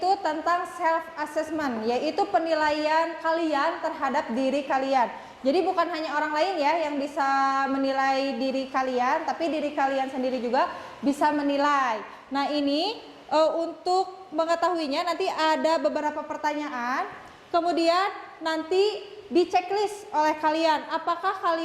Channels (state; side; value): identical; both; correlation 1.00